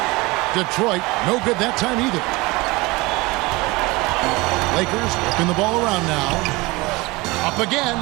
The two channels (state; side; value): quieter; left; 23.1 dB